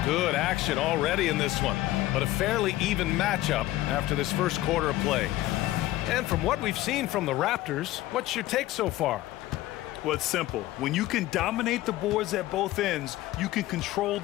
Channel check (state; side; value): quieter; right; 16.2 dB